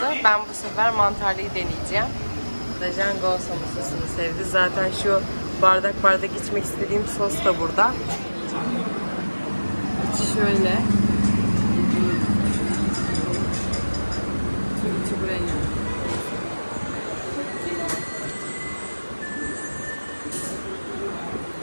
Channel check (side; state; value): both; inverted; correlation -1.00